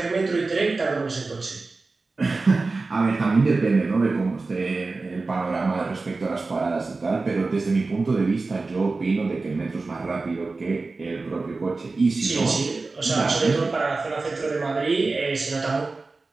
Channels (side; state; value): left; quieter; 3.7 dB